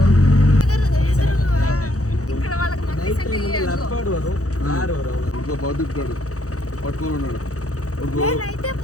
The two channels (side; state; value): right; late; 0.66 ms